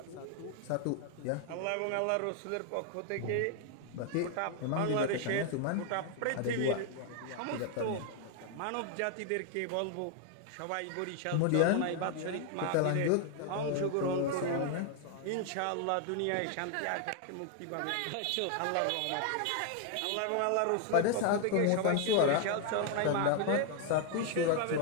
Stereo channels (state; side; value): different; both; correlation 0.00